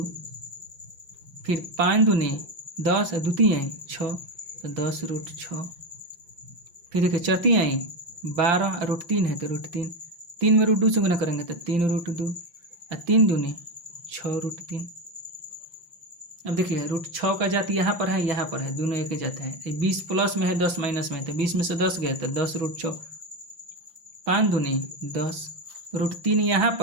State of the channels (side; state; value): left; late; 5.8 ms